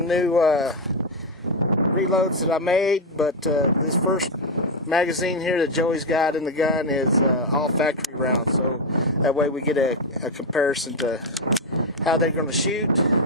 new reloads that I made, but this first magazine here that Joey's got in the gun is all factory rounds, so that way we get a comparison to how they're going to shoot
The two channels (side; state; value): both; normal; correlation 0.04